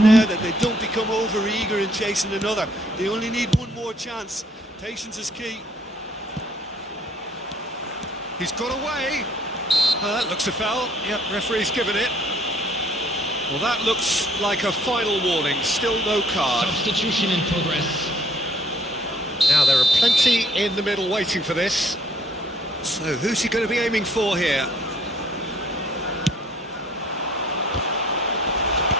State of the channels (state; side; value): normal; both; correlation 0.62